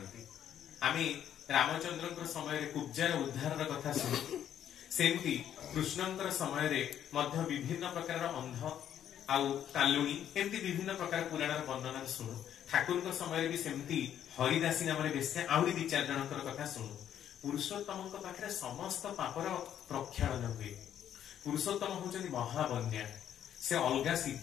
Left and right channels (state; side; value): quieter; right; 10.1 dB